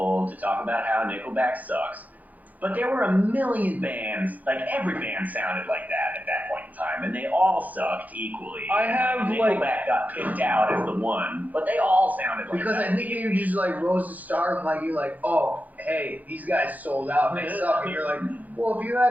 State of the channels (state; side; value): late; left; 0.080 ms